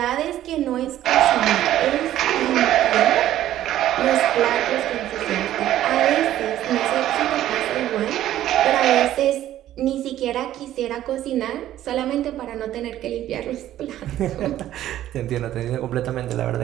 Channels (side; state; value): left; quieter; 12.9 dB